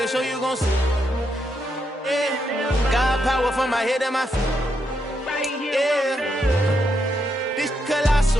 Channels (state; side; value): normal; both; correlation 0.80